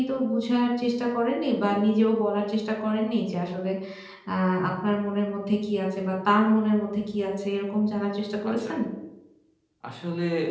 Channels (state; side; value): identical; both; correlation 1.00